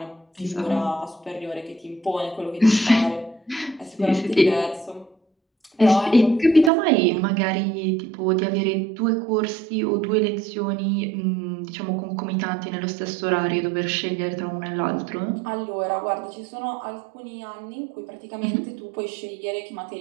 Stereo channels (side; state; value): left; drops out; at 6.7 s